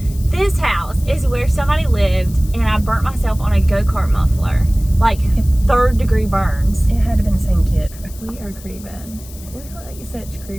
This house is where somebody lived, and I burnt myself on a go-kart muffler. Like 3rd-degree burns. It had to have been the same kid. We are creeping. We look like such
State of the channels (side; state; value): left; noise; hiss, 19 dB below the sound